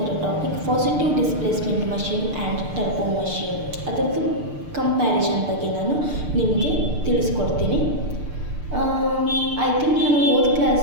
topic positive displacement machine and turbo machine. ಅದರದ್ದು comparison ಬಗ್ಗೆ ನಾನು ನಿಮಗೆ ತಿಳಿಸ್ಕೊಡ್ತೀನಿ. ಐ ಥಿಂಕ್ ನಾನು ಹೋದ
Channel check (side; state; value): left; late; 6.7 ms